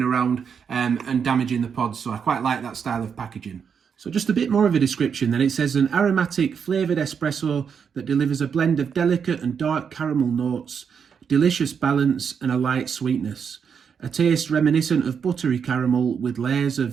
around and damaging the pods. So I quite like that style of packaging. So just a bit more of a description then. It says an aromatic flavoured espresso that delivers a blend of delicate and dark caramel notes, delicious balance and a light sweetness. A taste reminiscent of buttery caramel with layers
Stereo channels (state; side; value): quieter; left; 6.8 dB